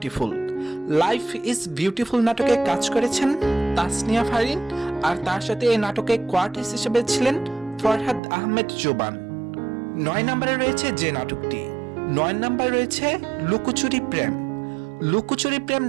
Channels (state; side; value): drops out; left; at 8.2 s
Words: Life is beautiful নাটকে কাজ করেছেন তাসনিয়া ফারিন, আর তার সাথে এই নাটকে কোয়ার্টিস্ট হিসেবে ছিলেন ফরহাদ আহমেদ জোবান। নয় নম্বরে রয়েছে যে নাটকটি, নয় নম্বরে রয়েছে লুকোচুরি প্রেম। লুকোচুরি প্রেম